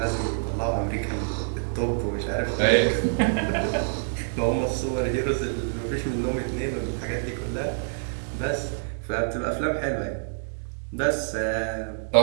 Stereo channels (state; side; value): silent; left; digital silence